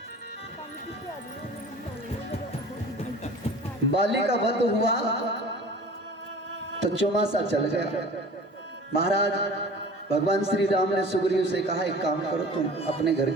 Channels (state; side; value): normal; both; correlation 0.43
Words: बाली का वध हुआ तो चौमासा चल गया। महाराज भगवान श्री राम ने सुग्रीव से कहा, एक काम करो, तुम अपने घर